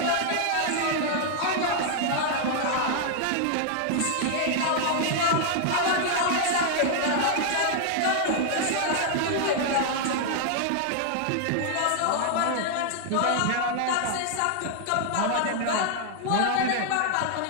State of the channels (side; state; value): both; different; correlation 0.00